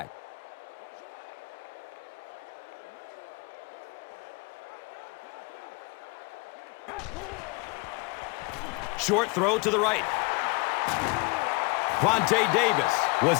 Short throw to the right. Vontae Davis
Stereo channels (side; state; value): right; quieter; 28.8 dB